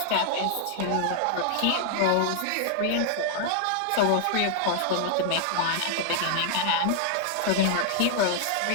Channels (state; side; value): different; both; correlation 0.00